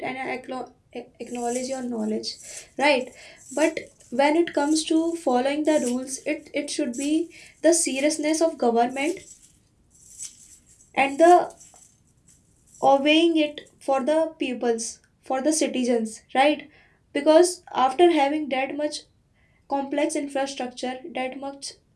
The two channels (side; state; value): both; identical; correlation 1.00